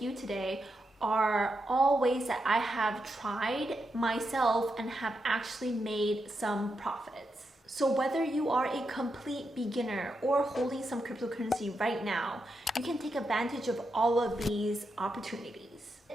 you today are all ways that I have tried myself and have actually made some profits. So whether you are a complete beginner or holding some cryptocurrency right now, you can take advantage of all of these opportunities.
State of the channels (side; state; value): both; normal; correlation 0.85